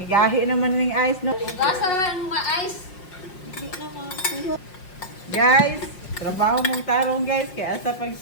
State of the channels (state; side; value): late; right; 5.4 ms